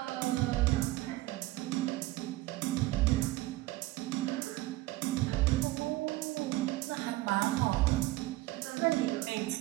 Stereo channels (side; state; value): left; quieter; 18.2 dB